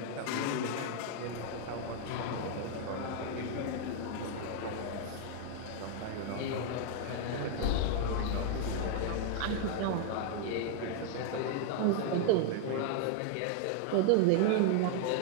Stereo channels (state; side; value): different; both; correlation 0.00